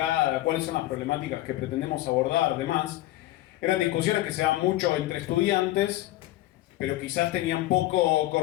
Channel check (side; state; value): right; quieter; 16.2 dB